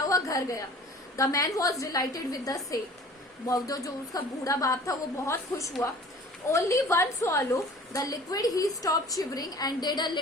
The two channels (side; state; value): both; normal; correlation 0.47